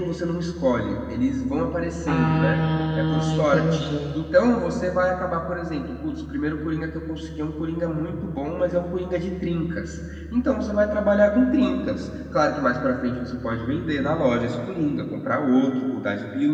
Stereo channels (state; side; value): identical; both; correlation 1.00